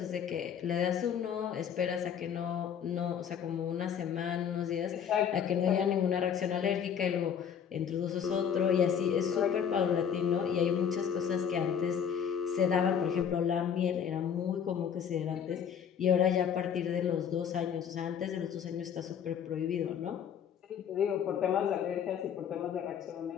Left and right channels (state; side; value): quieter; right; 8.1 dB